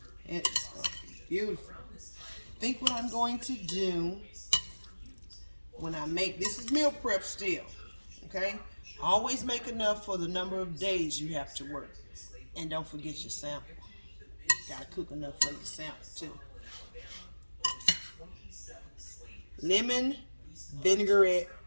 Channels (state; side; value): inverted; both; correlation -1.00